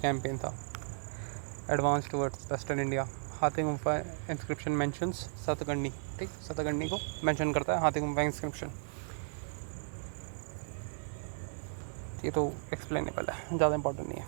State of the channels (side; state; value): left; silent; 54 dB below the other